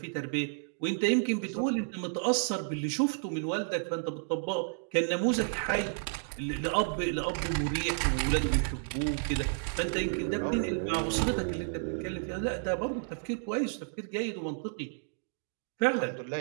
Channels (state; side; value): silent; left; digital silence